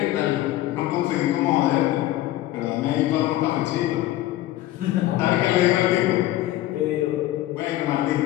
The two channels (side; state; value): right; quieter; 15.1 dB